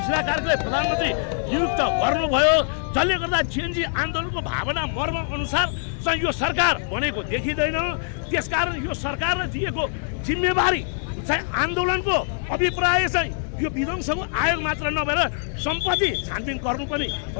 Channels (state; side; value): silent; right; digital silence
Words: कार्कीलाई प्रधानमन्त्री नियुक्त गर्नुभयो, जसले गर्दा जेएनजी आन्दोलनको भावना मर्म अनुसार चाहिँ यो सरकार बनेको देखिँदैन। त्यसकारण यो सरकारले दिएको जिम्मेवारी चाहिँ आन्दोलनको अभिप्राय चाहिँ यो विध्वंसको आयोग मात्र नभएर सम्पत्ति छानबिन गर्नु पनि